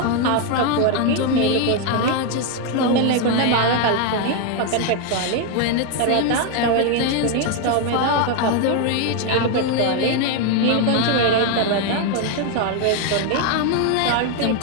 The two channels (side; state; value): both; different; correlation 0.01